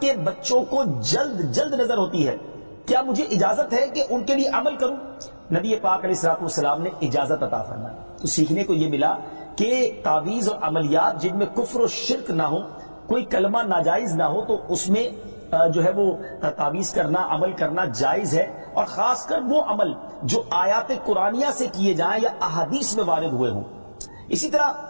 کے بچوں کو جلد نظر ہوتی ہے، کیا مجھے اجازت ہے کہ ان کے لیے عمل کروں؟ نبی پاک علیہ الصلوۃ والسلام نے اجازت عطا فرمائی۔ تو سیکھنے کو یہ ملا کہ تعویذ اور عملیات جن میں کفر و شرک نہ ہو، کوئی کلمہ ناجائز نہ ہو، تو اس میں جو ہے وہ تعویذ کرنا، عمل کرنا جائز ہے، اور خاص کر وہ عمل جو آیات قرآنیہ سے کیے جائیں یا احادیث میں وارد ہوئے ہوں۔ اسی طرح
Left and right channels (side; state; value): both; inverted; correlation -1.00